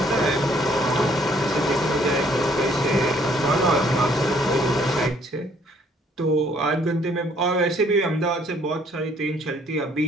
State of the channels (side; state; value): both; normal; correlation 0.63